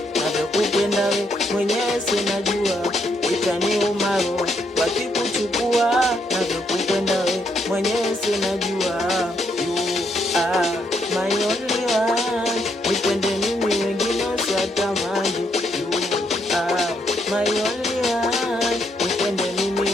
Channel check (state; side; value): normal; both; correlation 0.75